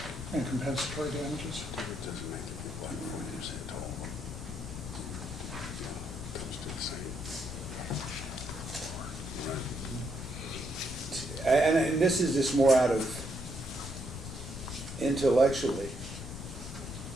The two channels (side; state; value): left; noise; rumble, 9 dB below the sound